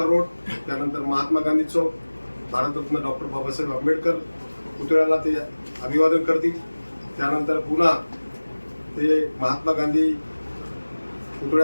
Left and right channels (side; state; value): both; inverted; correlation -1.00